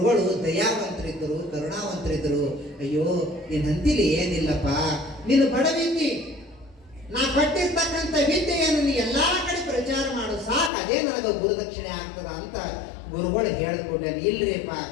ದಯಾವಂತರಿದ್ದರು, ಕರುಣಾವಂತರಿದ್ದರು. ಅಯ್ಯೋ ನೀನ್ ಅಂತಿಲಿ ಏನಿಲ್ಲಪ್ಪ, ನೀನು ಬಡವಿದ್ದಿ, ನಾ ಕೊಟ್ಟಿರ್ತಕ್ಕಂಥ ವಿದ್ಯೆಯನ್ನು ನೀ ಎಲ್ಲಾ ಕಡೆ ಪ್ರಚಾರ ಮಾಡು ಸಾಕು, ಅದೇ ನನಗೆ ಗುರುದಕ್ಷಿಣೆ ಆಗ್ತದ ಅಂತ ಗುರುಗಳು ಹೇಳಿಕೊಡ್ಲಿ. ಇಲ್ರಿಪ್ಪ,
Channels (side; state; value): right; drops out; at 10.7 s